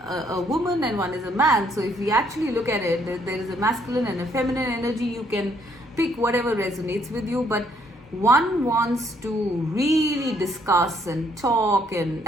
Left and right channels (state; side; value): normal; both; correlation 0.68